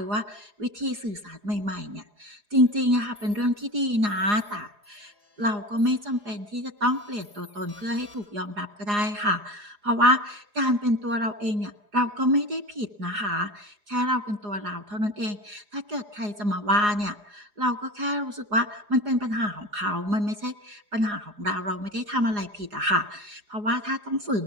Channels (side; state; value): left; late; 4.8 ms